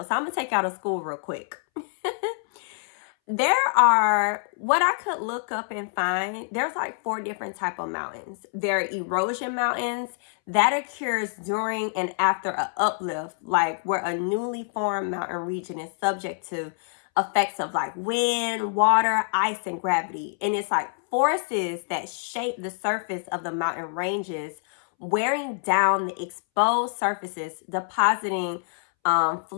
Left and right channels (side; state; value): right; silent; 61 dB below the other